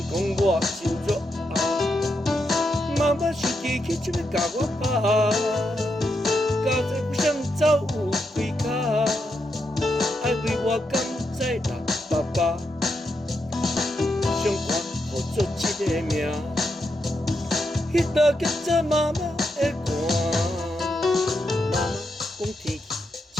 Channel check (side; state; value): both; normal; correlation 0.83